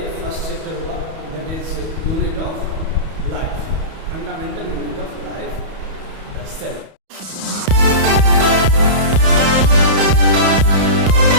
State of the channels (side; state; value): left; late; 31 ms